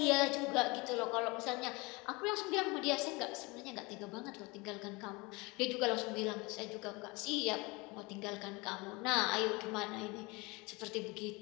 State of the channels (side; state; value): right; quieter; 25.6 dB